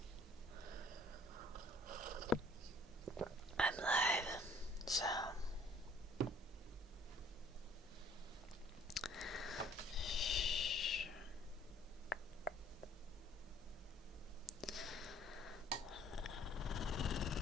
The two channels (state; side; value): normal; both; correlation 0.57